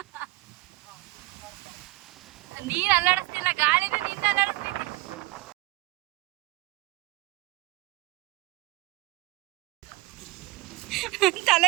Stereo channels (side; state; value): left; quieter; 21.3 dB